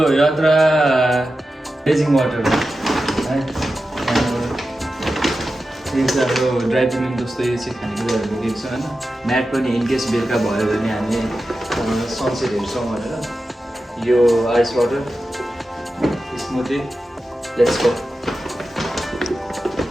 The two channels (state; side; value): normal; both; correlation 0.92